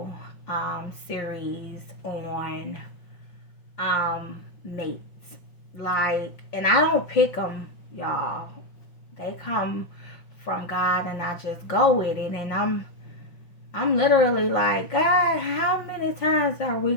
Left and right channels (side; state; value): right; late; 5.7 ms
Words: series on mates. Like, and I don't pick them, y'all. They come from God, and I just go with it. And I'm literally like, God, how many times are we